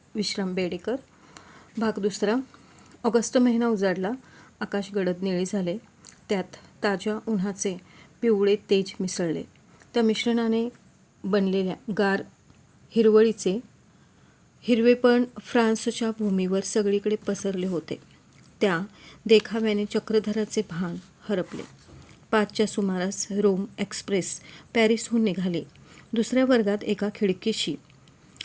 विश्राम बेडेकर. भाग दुसरा. ऑगस्ट महिना उजाडला, आकाश गडद निळे झाले, त्यात ताज्या उन्हाचे पिवळे तेज मिसळले. त्या मिश्रणाने बनलेल्या गार हिरवळीचे हिरवेपण फ्रान्सच्या भूमीवर सगळीकडे पसरले होते. त्या देखाव्याने चक्रधराचे भान हरपले. 5च्या सुमारास रोम एक्सप्रेस पॅरिसहून निघाली. दुसऱ्या वर्गात एका खिडकीशी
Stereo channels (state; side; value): identical; both; correlation 1.00